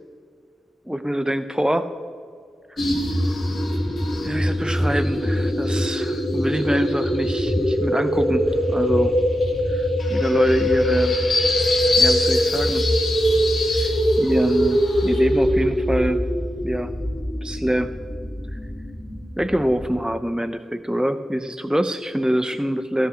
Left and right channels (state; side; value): normal; both; correlation 0.90